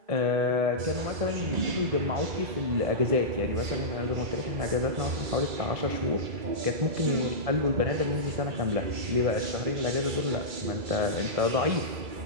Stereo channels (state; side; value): late; left; 2.3 ms